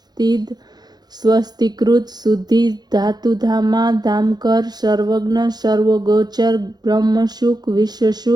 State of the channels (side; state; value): left; late; 0.20 ms